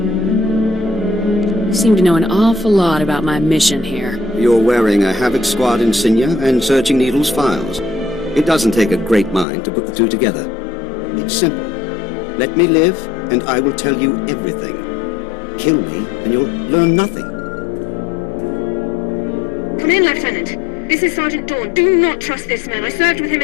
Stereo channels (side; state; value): right; drops out; at 9.5 s